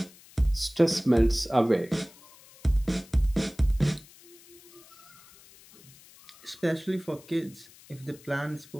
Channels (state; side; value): noise; left; hiss, 23 dB below the sound